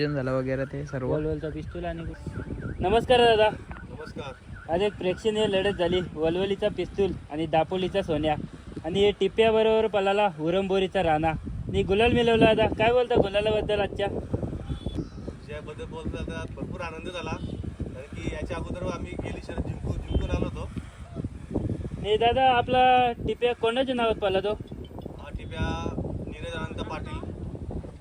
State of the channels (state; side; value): identical; both; correlation 1.00